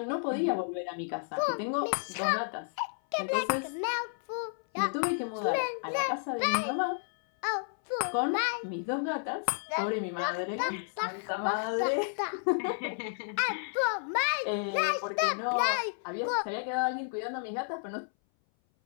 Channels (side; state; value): right; silent; 57 dB below the other